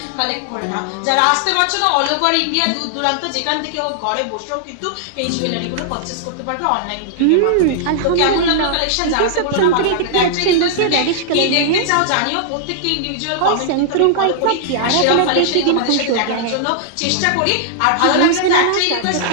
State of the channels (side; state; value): both; different; correlation -0.01